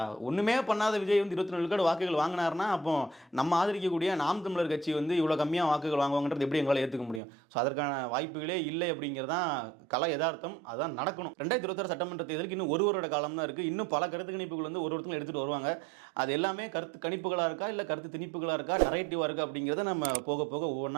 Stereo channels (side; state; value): left; drops out; at 7.2 s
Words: ஒன்றுமே பண்ணாத விஜய் வந்து 24 விழுக்காடு வாக்குகள் வாங்கினார்னா அப்போ நம்ம ஆதரிக்கக்கூடிய நாம் தமிழர் கட்சி வந்து இவ்வளோ கம்மியாக வாக்குகள் வாங்குவாங்கன்றது எப்படி எங்களால் ஏற்றுக்க முடியும்? ஸோ அதற்கான வாய்ப்புகளே இல்லை அப்படிங்கிறதான் கலை யதார்த்தம். அதுதான் நடக்கணும். 2026 சட்டமன்ற தேர்தலுக்கு இன்னும் ஒரு வருட காலம் தான் இருக்குது. இன்னும் பல கருத்து கணிப்புகள் வந்து ஒருத்தங்களும் எடுத்துகிட்டு வருவாங்க. அது எல்லாமே கருத்து கணிப்புகளாக இருக்கா, இல்லை கருத்து திணிப்புகளாக இருக்கா, நரேட்டிவாக இருக்கா அப்படிங்கிறத நம்ம போக போக